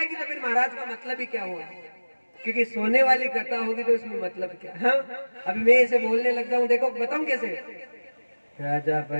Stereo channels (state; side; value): inverted; both; correlation -1.00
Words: तो फिर महाराज का मतलब ही क्या हुआ? क्योंकि सोने वाली कथा होगी तो उसमें मतलब क्या? हाँ, अभी मैं इसे बोलने लग जाऊं, देखो बताऊं कैसे। राजा